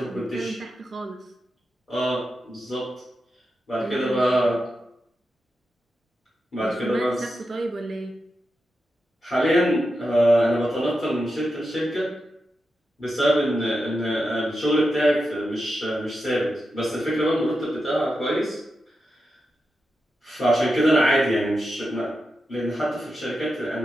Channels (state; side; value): normal; both; correlation 0.89